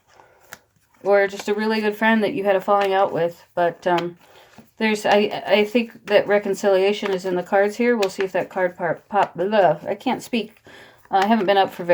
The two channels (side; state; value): both; identical; correlation 1.00